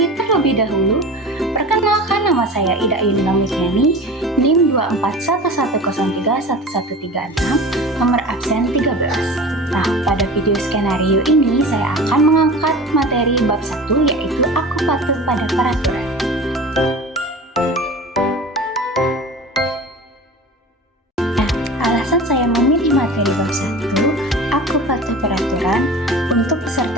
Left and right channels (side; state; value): both; normal; correlation 0.35